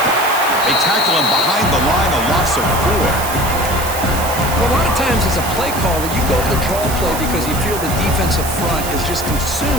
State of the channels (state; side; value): noise; right; hiss, 8 dB below the sound